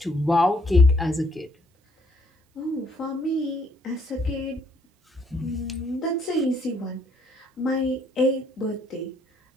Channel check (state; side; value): normal; both; correlation 0.68